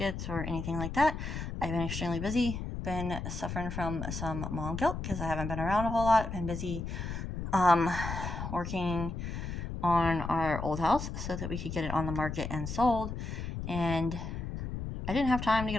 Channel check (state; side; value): noise; left; rumble, 5 dB below the sound